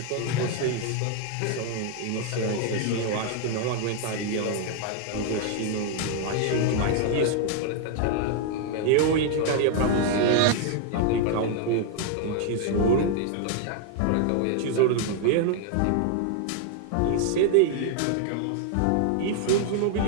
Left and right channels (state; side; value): different; both; correlation 0.00